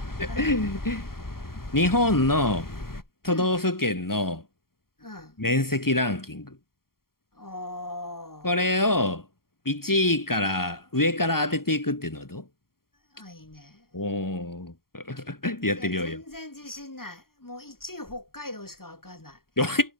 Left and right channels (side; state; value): right; late; 0.93 ms